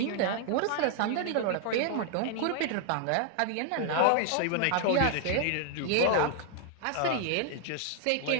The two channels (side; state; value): both; different; correlation 0.00